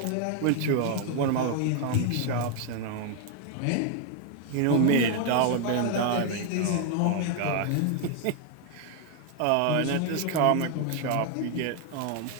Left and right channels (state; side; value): different; both; correlation 0.01